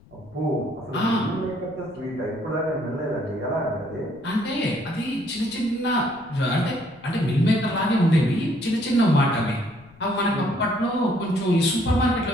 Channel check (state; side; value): noise; left; rumble, 26 dB below the sound